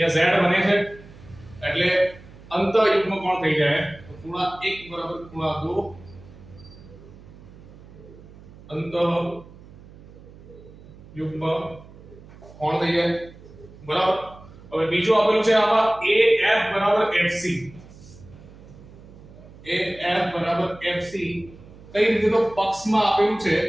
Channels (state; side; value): noise; right; hum, 20 dB below the sound